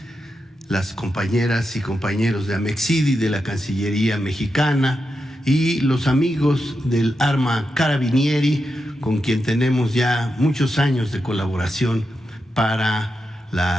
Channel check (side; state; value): both; normal; correlation 0.87